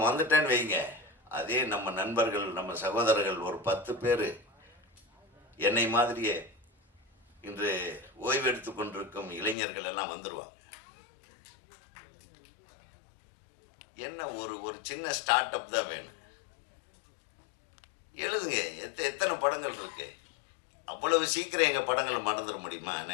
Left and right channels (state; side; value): drops out; right; at 9.6 s